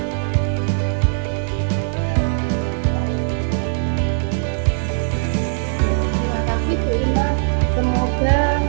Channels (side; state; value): left; silent; 65 dB below the other